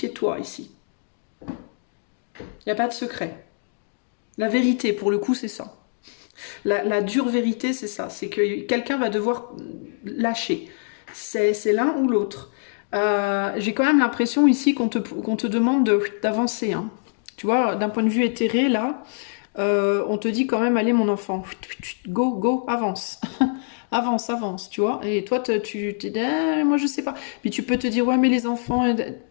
toi, ici. Il n'y a pas de secret. La vérité, pour le coup, c'est ça. La dure vérité, c'est ça. C'est que quelqu'un va devoir lâcher. C'est l'un ou l'autre. J'ai quand même l'impression ici qu'on te demande d'avancer. Hein. Tu vois, d'un point de vue éthéré, là, on te dit quand même, allez mon enfant, go, go, avance. Avance, avance, tu vois. Et toi, tu t'es dit, moi je sais pas. Puis tu peux te dire, ouais, mais les enfants,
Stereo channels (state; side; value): silent; right; digital silence